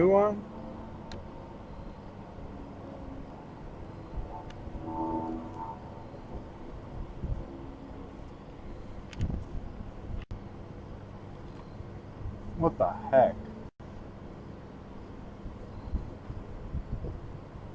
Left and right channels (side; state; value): both; identical; correlation 1.00